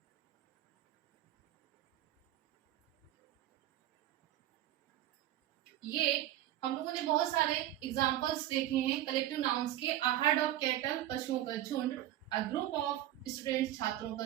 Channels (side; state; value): left; quieter; 13.6 dB